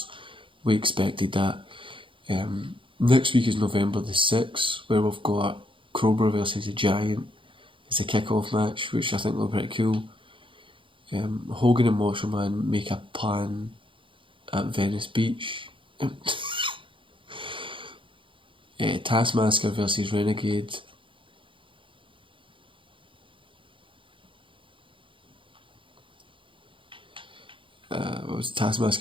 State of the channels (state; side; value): late; left; 0.25 ms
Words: We expected that. Next week is November the 6th, where we've got Cobra versus the Giant. It's a kick-off match, which I think will be pretty cool. Hogan and Macho Man make a plan at Venice Beach. Taskmaster versus Renegade.